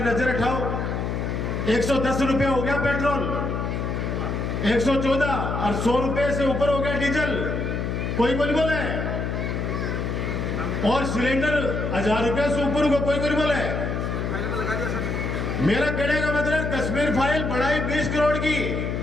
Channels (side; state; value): left; noise; hum, 2 dB below the sound